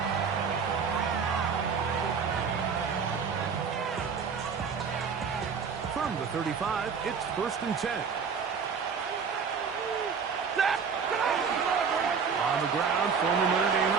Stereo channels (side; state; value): left; quieter; 6.0 dB